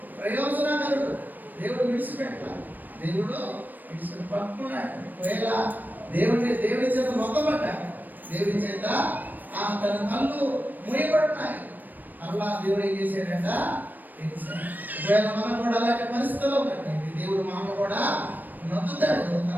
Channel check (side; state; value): left; late; 0.088 ms